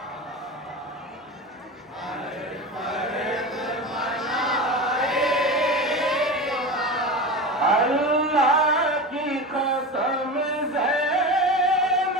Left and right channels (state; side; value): normal; both; correlation 0.26